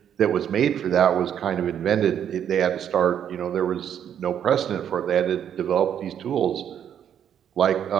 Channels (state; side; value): quieter; left; 9.2 dB